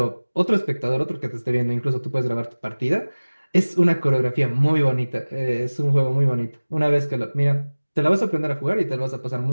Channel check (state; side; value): inverted; both; correlation -1.00